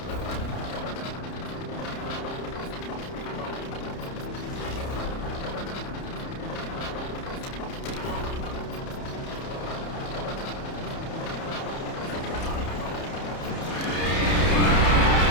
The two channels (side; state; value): right; late; 30 ms